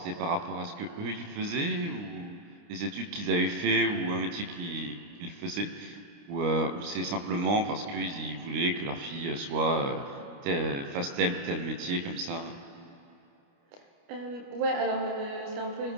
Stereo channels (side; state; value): left; late; 29 ms